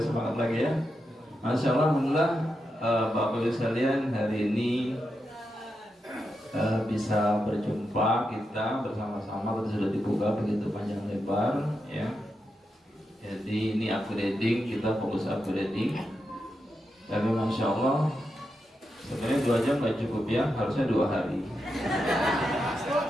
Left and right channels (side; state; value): both; normal; correlation 0.86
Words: semangat lagi ya. Masya Allah, alhamdulillah, Bapak Ibu sekalian, hari ini bisa berjumpa kita bersama-sama. Tadi sudah dibuka begitu panjang lebar ya. Jadi ini upgrading, kita fokus upgrading. Tapi Masya Allah, sebenarnya 2 jam nggak cukup ya, harusnya 2 hari.